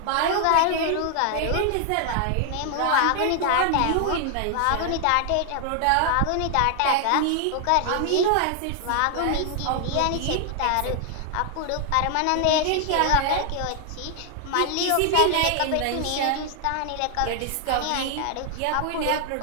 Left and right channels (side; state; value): both; different; correlation 0.00